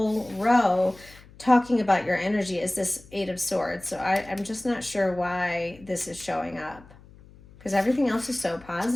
row talking about your energy is this Eight of Swords. So I'm just not sure why this is showing up because everything else is so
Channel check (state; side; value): noise; left; hum, 23 dB below the sound